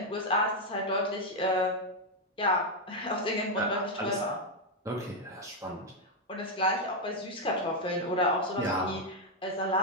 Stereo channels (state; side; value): normal; both; correlation 0.02